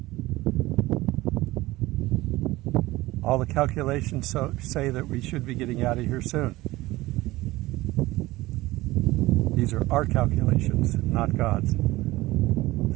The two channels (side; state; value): left; quieter; 18.7 dB